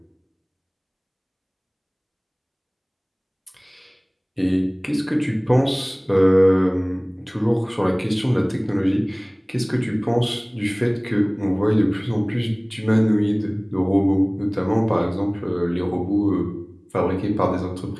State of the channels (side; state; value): both; identical; correlation 1.00